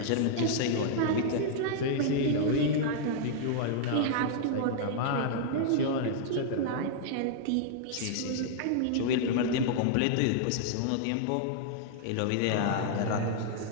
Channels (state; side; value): different; both; correlation -0.01